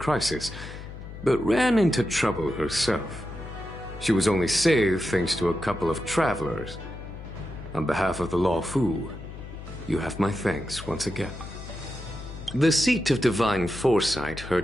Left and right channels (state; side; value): noise; left; hum, 12 dB below the sound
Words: but ran into trouble herself. She was only saved thanks to a couple of travelers. On behalf of the Law Fu, you have my thanks once again. The seat of divine foresight